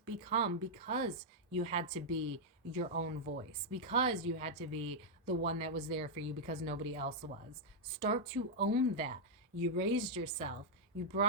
become because you had to be your own voice, because you had to be the one that was there for you because nobody else was. Start to own that. You raised yourself. You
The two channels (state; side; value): normal; both; correlation -0.04